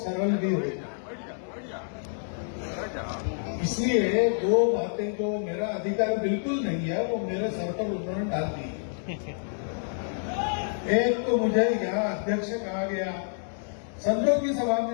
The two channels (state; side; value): silent; right; 59 dB below the other